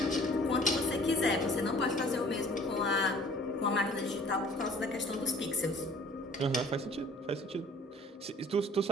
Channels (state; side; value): normal; both; correlation 0.52